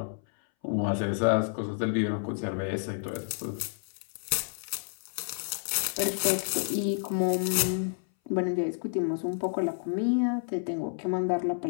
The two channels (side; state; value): right; silent; 58 dB below the other